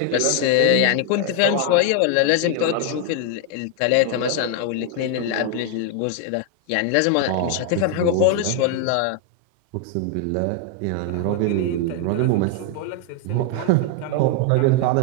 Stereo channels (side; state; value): both; different; correlation 0.00